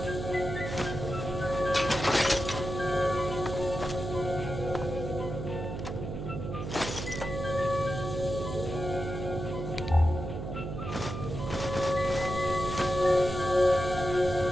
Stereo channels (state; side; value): noise; right; hum, 6 dB below the sound